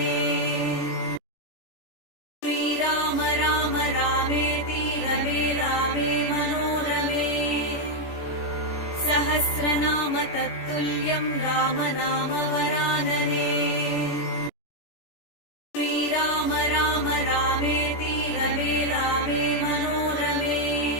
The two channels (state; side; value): late; right; 17 ms